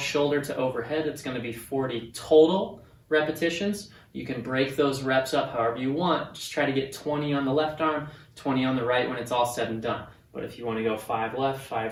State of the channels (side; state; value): both; identical; correlation 1.00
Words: to overhead. It's going to be 40 total repetitions. You can break those reps up however you want. Just try to get 20 on the left arm, 20 on the right when it's all said and done. But if you want to go 5 left,